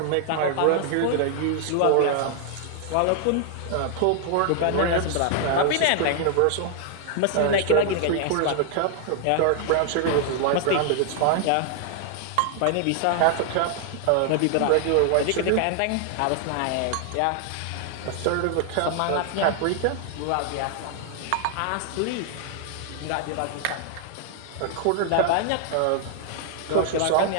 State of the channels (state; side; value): different; both; correlation 0.00